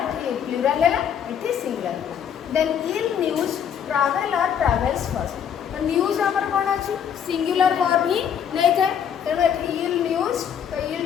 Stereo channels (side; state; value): right; quieter; 8.4 dB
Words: प्लूरल हला एठी singular then ill news travel or travels first तो न्यूज हमर कोन अछि सिंगुलर वर्ब ही नै थे तेणु एठी ill news तो ill